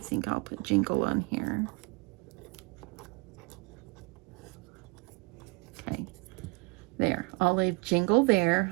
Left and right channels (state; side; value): quieter; left; 27.7 dB